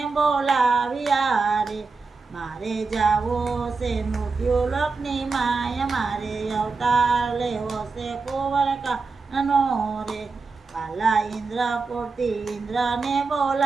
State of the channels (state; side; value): quieter; left; 4.3 dB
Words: બોલાવ્યા રે, મારે જાવો છે મૃત્યુલોકની માય, મારે અવતાર લેવો છે કુંવરકાનનો રે, વાલા ઇન્દ્રપુરથી ઇન્દ્રને